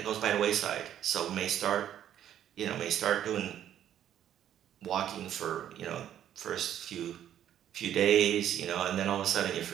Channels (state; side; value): quieter; left; 10.7 dB